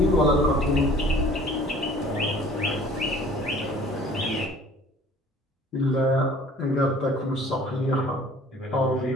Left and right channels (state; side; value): normal; both; correlation 0.50